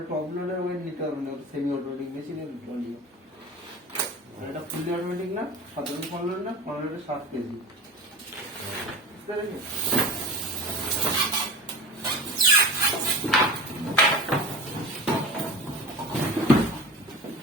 টপ লোডের ওয়েট নিতে পারবে না, সেমি অটোমেটিক মেশিনের ট্রলি। এটা ফুলি অটোমেটিক না, সাধারণ ফলন না, ফলনটা 7 কেজি। বুঝতে পেরেছি?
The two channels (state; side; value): normal; both; correlation 0.32